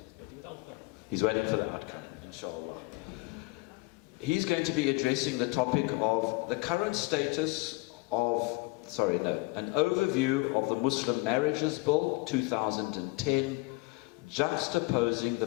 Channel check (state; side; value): quieter; right; 24.6 dB